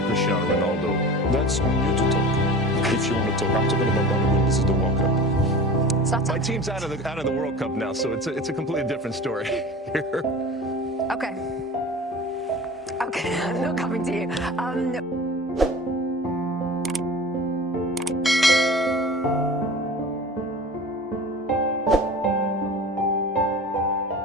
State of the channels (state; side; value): normal; both; correlation 0.37